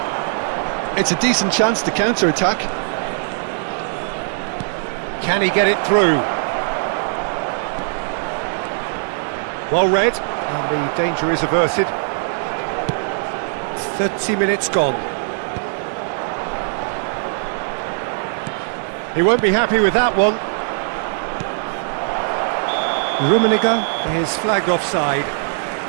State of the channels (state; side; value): silent; left; digital silence